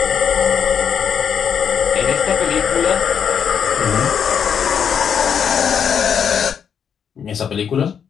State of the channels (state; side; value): quieter; right; 7.6 dB